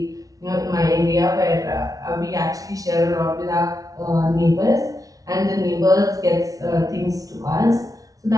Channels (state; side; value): late; left; 0.18 ms